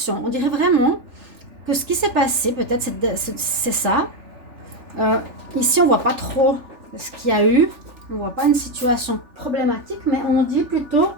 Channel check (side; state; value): left; late; 3.4 ms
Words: On dirait vraiment que ce qui s'est passé, peut-être c'est ça. Ici, on ne voit pas trop ce qu'il y a eu. On ne voit pas une situation problématique, mais on dit plutôt